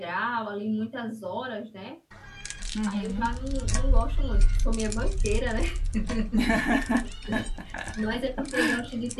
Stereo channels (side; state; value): both; identical; correlation 1.00